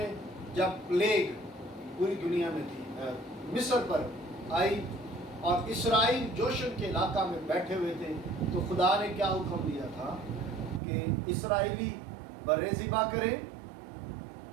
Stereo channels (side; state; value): left; drops out; at 10.8 s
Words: جب پلیگ پوری دنیا میں تھی، مصر پر آئی اور اسرائیل جوشن کے علاقہ میں بیٹھے ہوئے تھے، تو خدا نے کیا حکم دیا تھا کہ اسرائیلی برے ذبح کریں،